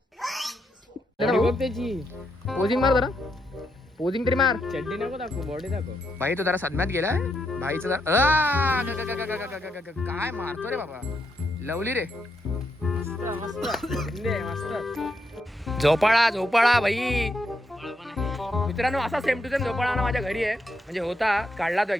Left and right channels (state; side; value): normal; both; correlation 0.80